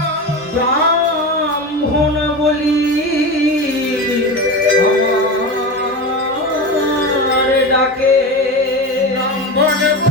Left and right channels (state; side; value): normal; both; correlation 0.23